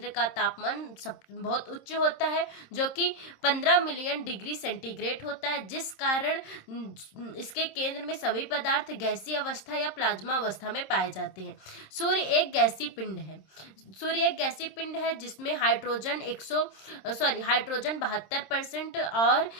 का तापमान बहुत उच्च होता है, जो कि 15 मिलियन डिग्री सेंटीग्रेड होता है, जिस कारण इसके केंद्र में सभी पदार्थ गैसीय अवस्था या प्लाज्मा अवस्था में पाए जाते हैं। सूर्य एक गैसीय पिंड है जिसमें हाइड्रोजन 72% और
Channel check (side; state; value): right; late; 26 ms